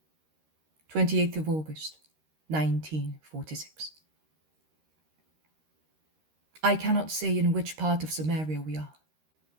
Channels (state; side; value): late; left; 13 ms